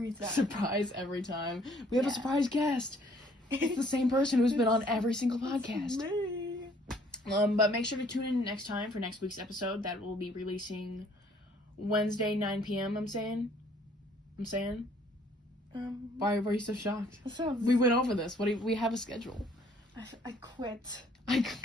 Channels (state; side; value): normal; both; correlation 0.61